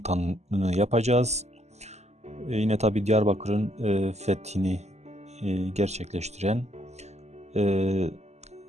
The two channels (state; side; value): late; left; 0.33 ms